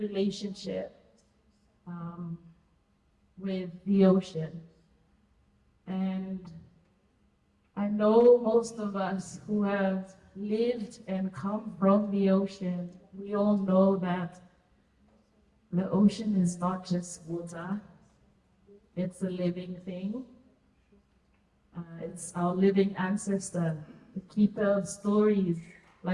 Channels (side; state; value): both; identical; correlation 1.00